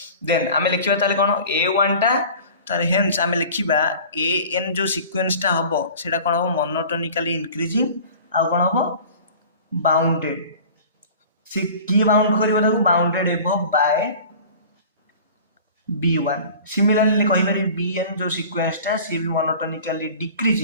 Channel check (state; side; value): inverted; both; correlation -0.43